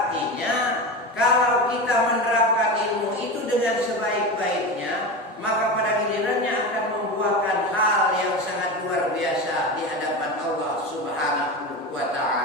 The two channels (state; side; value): normal; both; correlation 0.24